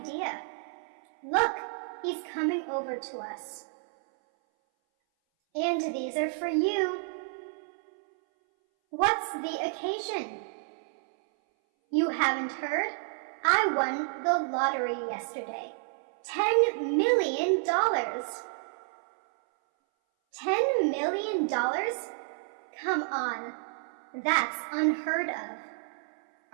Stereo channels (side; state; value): left; silent; 58 dB below the other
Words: Look, he's coming over to us. And these are for you. What's the occasion? You haven't heard? I won the lottery yesterday. $10 million. $10 million? Come on. That's unheard of.